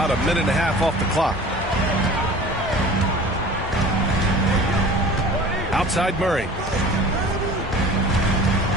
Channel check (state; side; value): normal; both; correlation 0.42